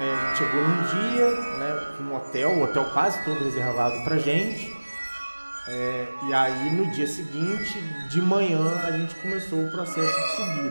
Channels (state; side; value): inverted; both; correlation -1.00